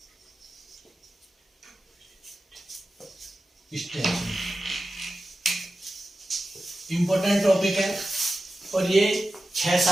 इंपॉर्टेंट टॉपिक है और ये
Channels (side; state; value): both; normal; correlation 0.93